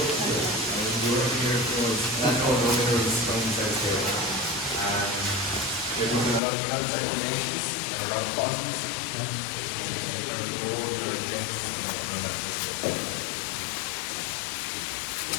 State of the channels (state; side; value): drops out; right; at 6.4 s